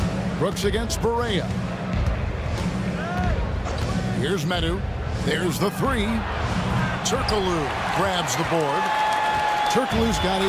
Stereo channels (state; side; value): identical; both; correlation 1.00